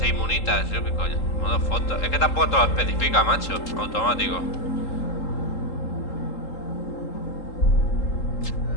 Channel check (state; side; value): late; right; 3.8 ms